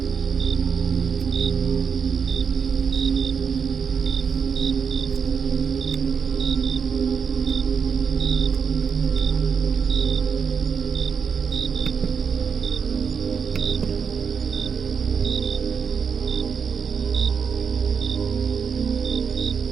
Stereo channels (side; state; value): left; quieter; 6.3 dB